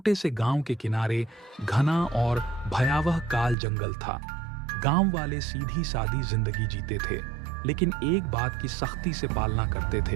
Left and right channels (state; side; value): drops out; left; at 3.6 s